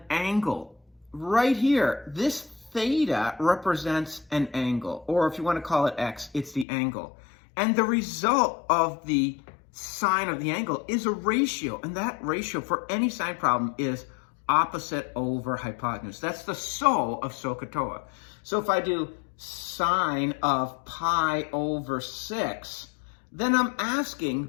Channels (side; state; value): right; drops out; at 6.7 s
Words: angle. Right here, this theta represents an angle, or if you want to call it x, it's the angle. And the result of the sine of the angle is a ratio, and that ratio for any sine problem is opposite over hypotenuse. That's the SO of SOHCAHTOA. So if I do sine of pi over 6, then I'm asking,